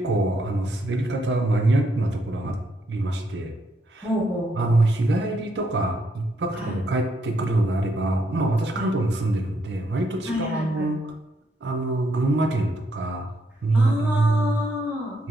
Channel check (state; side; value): normal; both; correlation 0.76